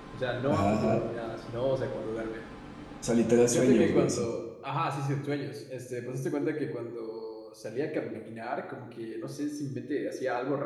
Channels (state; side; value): identical; both; correlation 1.00